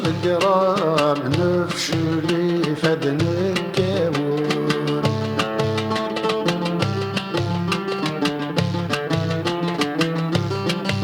نفشلي فدن الكاون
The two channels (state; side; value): identical; both; correlation 1.00